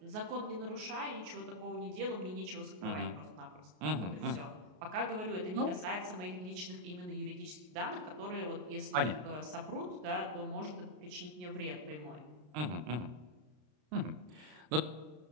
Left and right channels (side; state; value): left; late; 33 ms